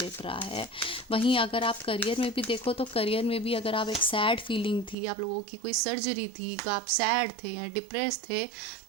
रहा है। वहीं अगर आप करियर में भी देखो, तो करियर में भी अगर आप एक सैड फीलिंग थी, आप लोगों की कोई सर्जरी थी, आप सैड थे या डिप्रेस थे,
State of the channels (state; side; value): drops out; left; at 5.0 s